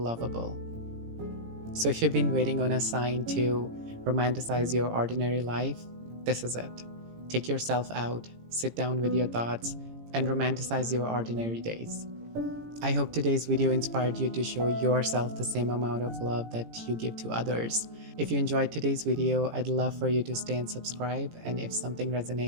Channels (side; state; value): left; late; 18 ms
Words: So if you've been waiting on a sign to romanticize your ordinary life, this is it. Take yourself out, sit down with your thoughts, and romanticize your ordinary days. I hope today's video inspired you to show yourself the same amount of love that you give to others. If you enjoyed today's video, I'd love for you to stay and subscribe, and if something